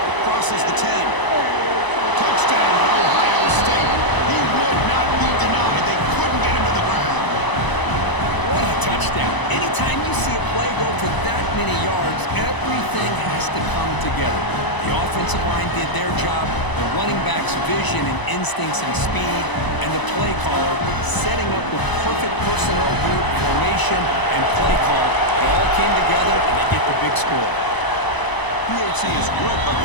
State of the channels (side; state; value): right; late; 1.0 ms